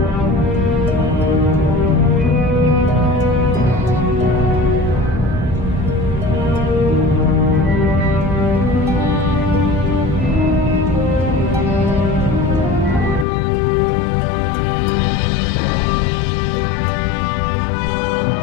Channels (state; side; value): drops out; right; at 13.2 s